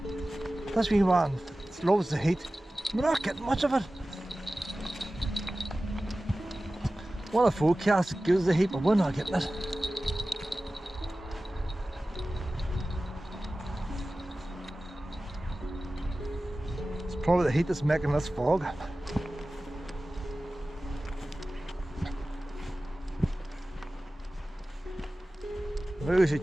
This wee one loves the heat. We're not getting much of it. One of the forecasts gives the heat, but we're not getting it. Probably the heat that's making this fog. Maybe we should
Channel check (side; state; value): both; normal; correlation 0.96